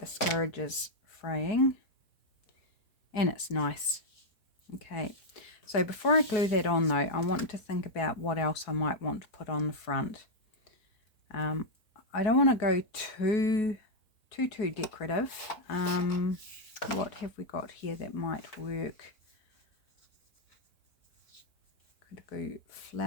fraying, and it's nice. Okay, so before I glue that on though, I want to think about what else I might want to put on the front. I don't want to go too decorative. What have we got here that might work? Could go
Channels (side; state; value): right; late; 4.7 ms